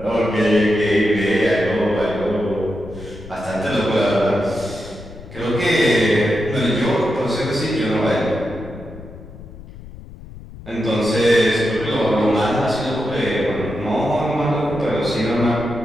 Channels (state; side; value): noise; left; rumble, 16 dB below the sound